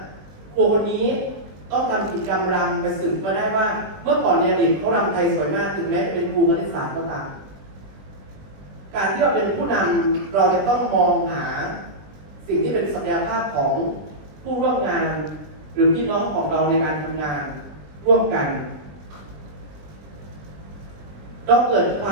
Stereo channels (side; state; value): left; late; 20 ms